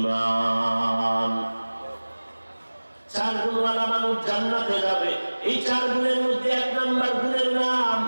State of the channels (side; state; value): both; inverted; correlation -1.00